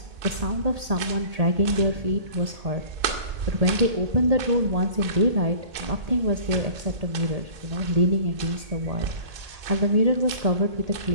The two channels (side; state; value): left; late; 2.2 ms